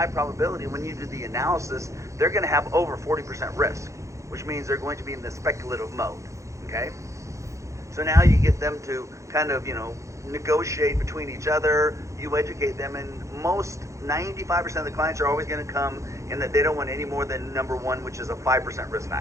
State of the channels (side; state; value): left; late; 0.15 ms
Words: probability when you do the analysis, they're going to have over 40% risk, which means they're going to be in the speculative mode, okay? So now you get them to kind of, negotiate between each other, you educate them, and most 95% of the clients are always going to come in that they don't want any more than number 1, which is a 5% risk